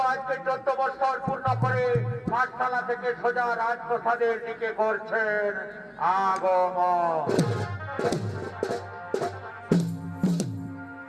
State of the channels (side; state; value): both; identical; correlation 1.00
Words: আজকে 14 বছর পূর্ণ করে পাঠশালা থেকে সোজা রাজপ্রসাদের দিকে করছেন আগমন।